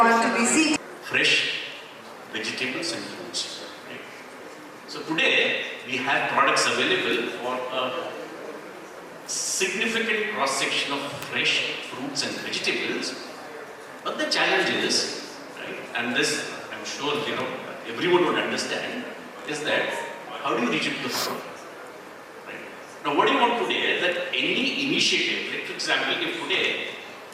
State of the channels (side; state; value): both; identical; correlation 1.00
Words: to be seated. Fresh vegetables and fruits. Right? So today we have products available for a significant cross-section of fresh fruits and vegetables. But the challenge is, right, and this I'm sure everyone would understand, is that how do you reach it to the farmer? Right? Now what do you want today is that any initiative, like for example, if today